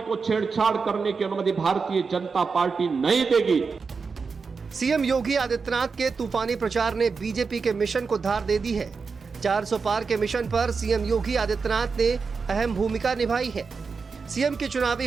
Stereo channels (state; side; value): quieter; left; 5.0 dB